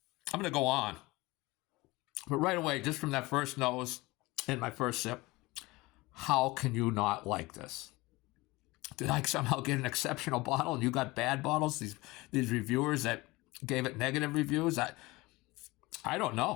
to go on. But right away, just from that first nose and my first sip, how can you not like this? Did I somehow get an exceptional bottle and you got bad bottles? These reviewers that gave it negative reviews? I don't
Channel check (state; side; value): quieter; right; 21.7 dB